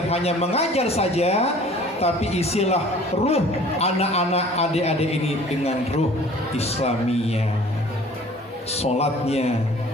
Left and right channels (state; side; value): normal; both; correlation 0.49